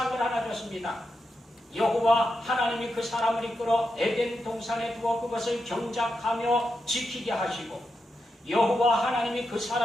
하나 줬습니다. 여호와 하나님이 그 사람을 이끌어 에덴 동산에 두어 그것을 경작하며 지키게 하시고 여호와 하나님이 그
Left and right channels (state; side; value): normal; both; correlation 0.87